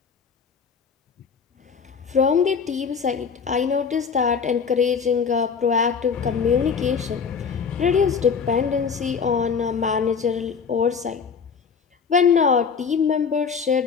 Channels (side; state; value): right; quieter; 6.1 dB